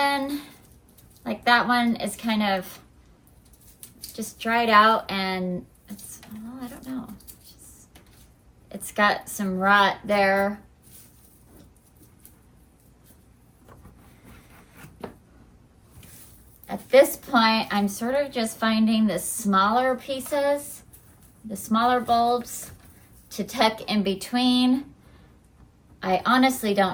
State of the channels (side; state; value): both; identical; correlation 1.00